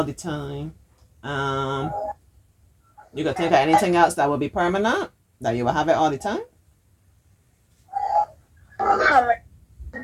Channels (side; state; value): both; identical; correlation 1.00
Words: the time. Um, you can think of anything else that will be permanent, that you will have it all the time.